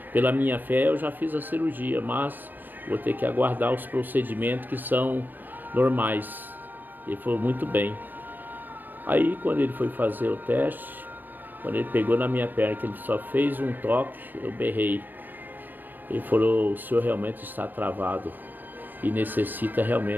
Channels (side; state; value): left; late; 0.090 ms